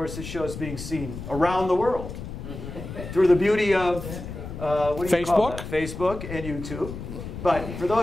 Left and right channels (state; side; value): noise; left; rumble, 9 dB below the sound